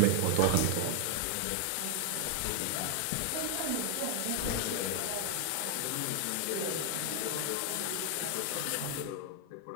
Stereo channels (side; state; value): both; different; correlation 0.00